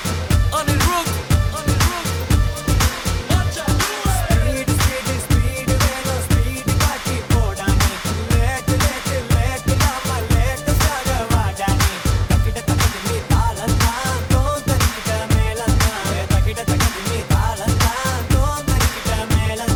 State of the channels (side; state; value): both; identical; correlation 1.00